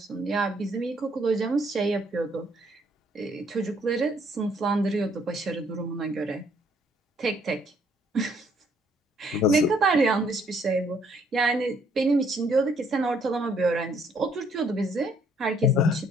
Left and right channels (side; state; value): both; normal; correlation 0.66